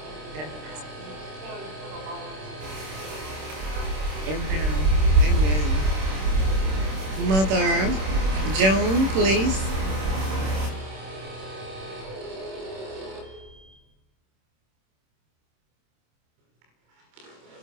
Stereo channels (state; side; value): late; left; 26 ms